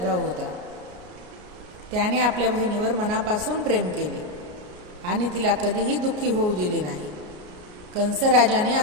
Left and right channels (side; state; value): left; late; 33 ms